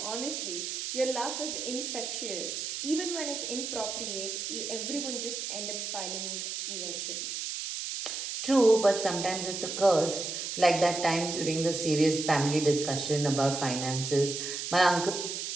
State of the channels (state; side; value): noise; right; hiss, 4 dB below the sound